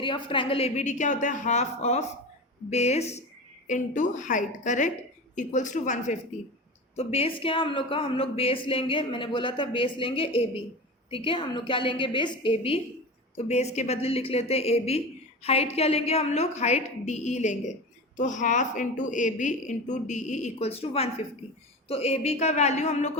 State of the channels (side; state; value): both; normal; correlation 0.28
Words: of triangle A B D क्या होता है? Half of base into height, correct, equals to 150। तो बेस क्या है हम लोग का? हम लोग बेस लेंगे, मैंने बोला था बेस लेंगे ए बी, ठीक है। हम लोग क्या लेंगे? Base A B. तो बेस के बदले लिख लेते हैं ए बी। हाइट क्या लेंगे हम लोग? हाइट डी ई लेंगे। तो half into A B into D E equals to 150। तो ए बी का वैल्यू हम लोग